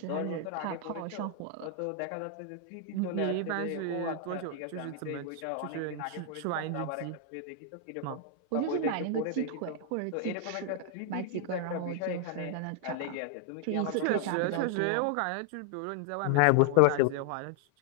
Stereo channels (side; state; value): both; different; correlation 0.00